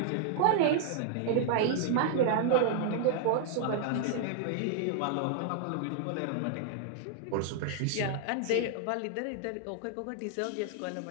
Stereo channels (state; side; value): different; both; correlation -0.01